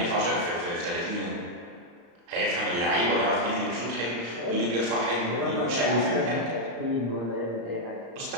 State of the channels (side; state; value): left; late; 34 ms